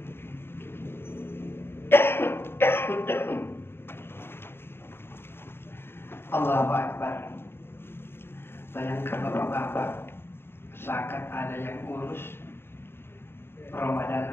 Allahu Akbar. Bayangkan bapak-bapak, zakat ada yang urus, Ramadan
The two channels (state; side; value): late; right; 0.11 ms